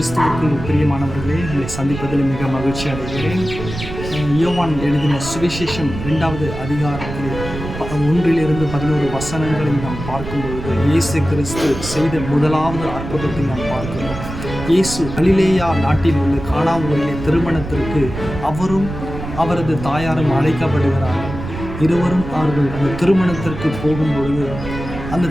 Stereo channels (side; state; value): right; noise; rumble, 9 dB below the sound